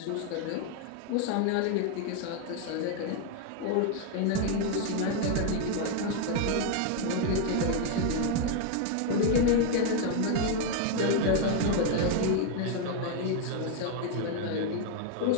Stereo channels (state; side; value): different; both; correlation 0.01